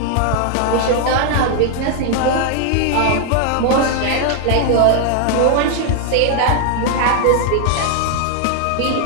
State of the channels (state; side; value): different; both; correlation 0.00